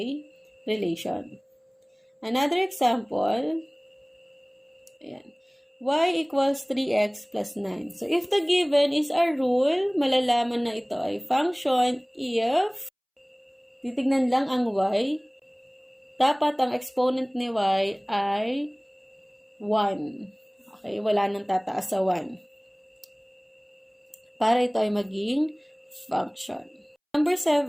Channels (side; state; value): both; identical; correlation 1.00